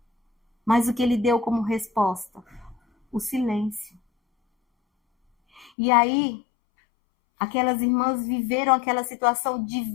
mas o que ele deu como resposta? O silêncio. E aí, aquelas irmãs viveram aquela situação de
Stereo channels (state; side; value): drops out; right; at 5.7 s